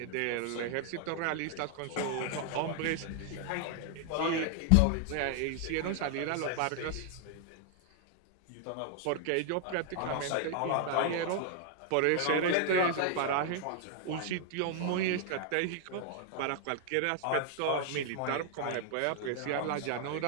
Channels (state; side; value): different; both; correlation 0.00